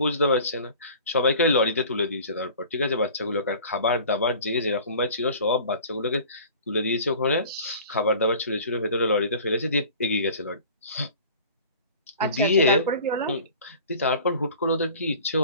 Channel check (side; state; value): both; inverted; correlation -0.44